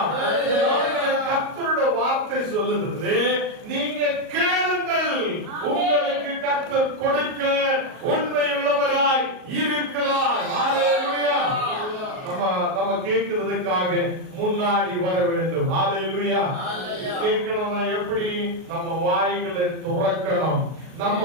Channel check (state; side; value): late; left; 38 ms